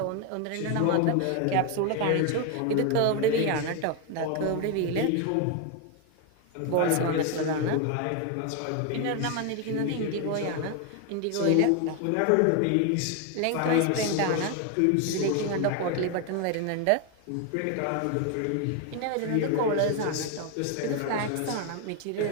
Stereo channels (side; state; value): both; different; correlation 0.01